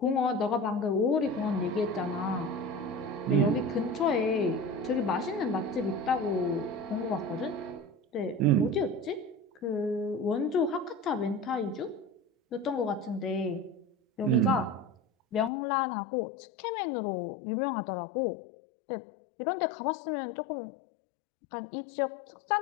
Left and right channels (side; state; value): right; drops out; at 15.5 s